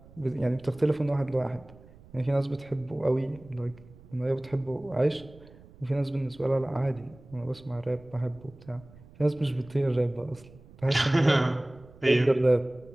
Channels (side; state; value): right; noise; rumble, 22 dB below the sound